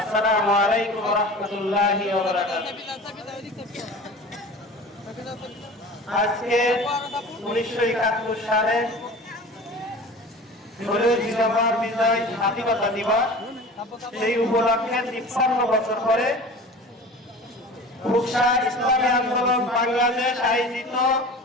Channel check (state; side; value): normal; both; correlation 0.38